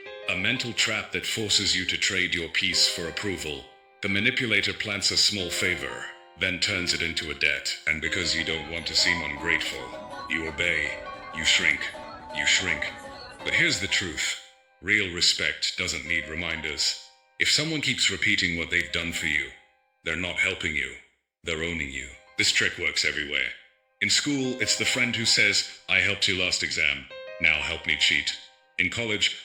a mental trap that forces you to trade your peace for approval. The manipulator plants a small favor, then turns it into a debt, and because you don't want to seem ungrateful, you obey, you shrink. But here's the truth. Real respect doesn't need reminders. If someone keeps repeating what they've done for you, they're not helping you, they're owning you. This trick works everywhere. In school, it's the friend who says, "I helped you last exam, now help me cheat." In college,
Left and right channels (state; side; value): identical; both; correlation 1.00